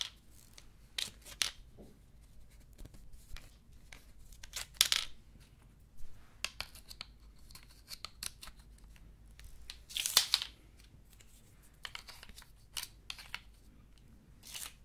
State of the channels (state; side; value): identical; both; correlation 1.00